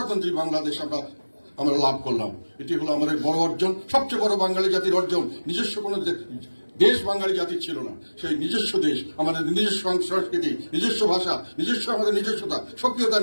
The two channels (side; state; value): both; inverted; correlation -1.00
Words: বাংলাদেশ আমরা লাভ করলাম। এটি হলো আমাদের বড় অর্জন, সবচেয়ে বড় বাঙালি জাতির অর্জন। নিজস্ব কোনো দেশ বাঙালি জাতির ছিল না, সেই নিজস্ব দেশ, আমাদের নিজস্ব সংস্কৃতি, নিজস্ব ভাষা, নিজস্ব আমাদের নিজস্বতা, সক্রিয়তা